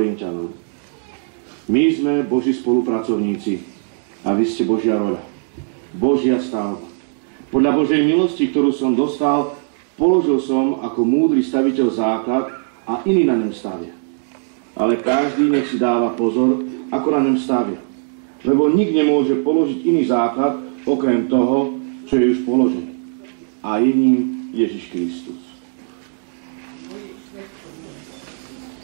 My sme Boží spolupracovníci a vy ste Božia roľa, Božia stavba. Podľa Božej milosti, ktorú som dostal, položil som ako múdry staviteľ základ a iný na ňom stavia. Ale každý nech si dáva pozor, ako na ňom stavia. Lebo nik nemôže položiť iný základ, okrem toho, čo je už položený. A je ním Ježiš Kristus.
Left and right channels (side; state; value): left; silent; digital silence